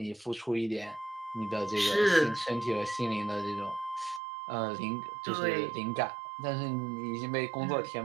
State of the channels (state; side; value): drops out; left; at 4.2 s